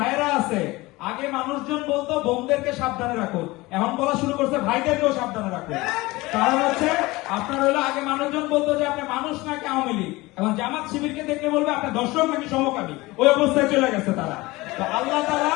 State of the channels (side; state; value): right; quieter; 21.0 dB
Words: আছে, আগে মানুষজন বলতো বোনদেরকে সাবধানে রাখো, এখন বলা শুরু করছে ভাইদেরকেও সাবধানে রাখো। কারণ হচ্ছে আপনার হলো আগে মানুষজন বলতো যে আপনি মানুষ নাকি আওয়ামী লীগ, এখন জামাত শিবিরকে দেখলে বলবে আপনি দর্শক নাকি সমকামী। ওই অবস্থায় চলে গেছে তারা। তো আল্লাহ তাআলা